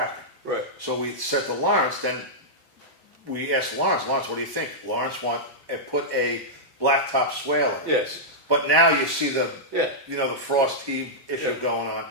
Right. So we said to Lawrence, then we asked Lawrence, what do you think? Lawrence put a blacktop swale in. Yes. But now you see the Yeah. the frost heave issue Yeah. going on.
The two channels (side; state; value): both; normal; correlation -0.10